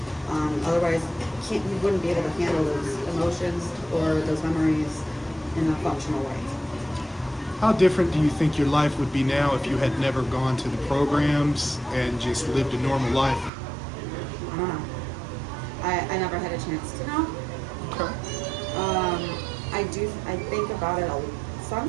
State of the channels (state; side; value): drops out; left; at 13.5 s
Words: Otherwise, you wouldn't be able to handle those emotions or those memories in a functional way. How different do you think your life would be now if you had never gone to the programs and just lived a normal life? I don't know. I never had a chance to know. Okay. I think about it